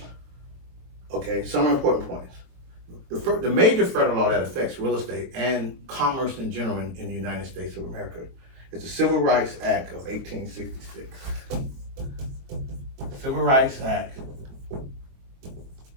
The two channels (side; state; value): left; late; 22 ms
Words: Okay, summary important points. The major federal law that affects real estate and commerce in general in the United States of America is the Civil Rights Act of 1866. Civil Rights Act